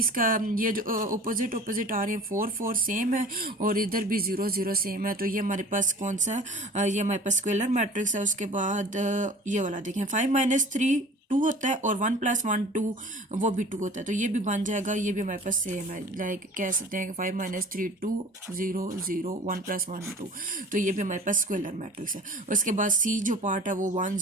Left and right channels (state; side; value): normal; both; correlation 0.44